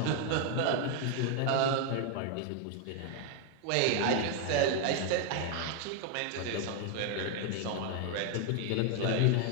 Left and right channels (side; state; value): both; different; correlation 0.00